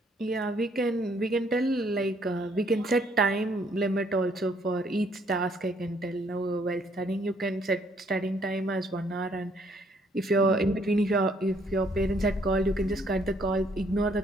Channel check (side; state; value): both; normal; correlation 0.66